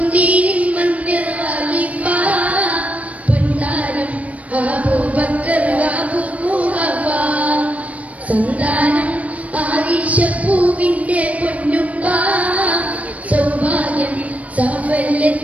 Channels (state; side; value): late; left; 0.067 ms